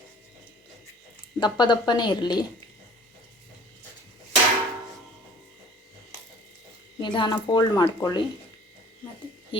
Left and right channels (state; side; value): normal; both; correlation 0.49